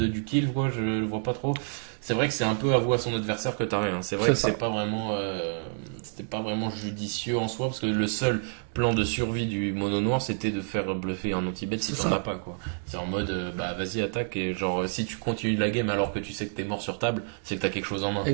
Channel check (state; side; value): silent; left; digital silence